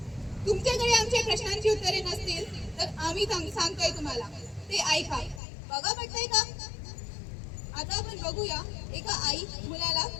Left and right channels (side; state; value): right; drops out; at 5.4 s